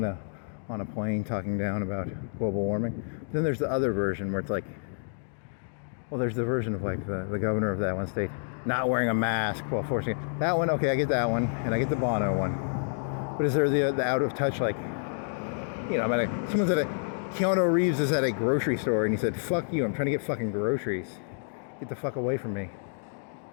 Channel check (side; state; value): right; silent; digital silence